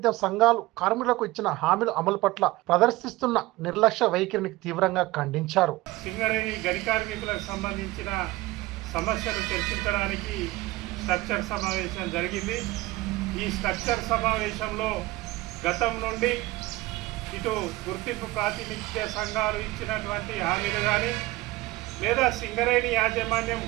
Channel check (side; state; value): left; quieter; 19.3 dB